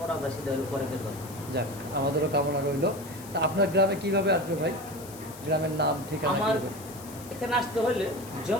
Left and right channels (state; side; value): noise; left; hiss, 17 dB below the sound